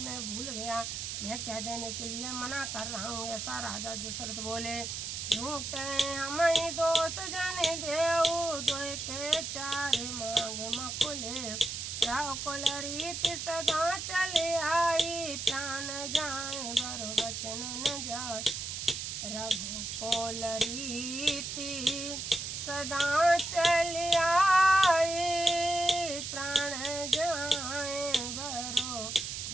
भूल गया मैं कह देने के लिए मना कर रहा हूँ ऐसा राजा दशरथ बोले। झूठे हमें दोष जाने देऊ दो के चार मांगे मकुले राव कुल रीति सदा चले आई प्राण जाए बरो वचन न जाए रघुकुल रीति सदा चले आई प्राण जाए बरो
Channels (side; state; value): right; noise; hiss, 5 dB below the sound